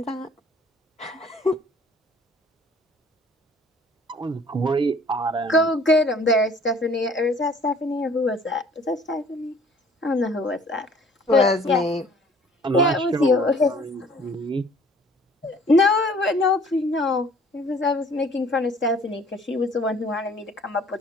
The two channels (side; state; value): both; normal; correlation 0.54